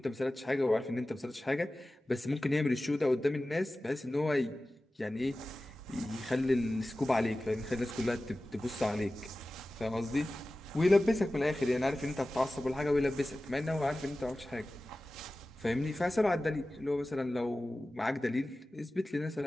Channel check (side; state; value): both; normal; correlation 0.96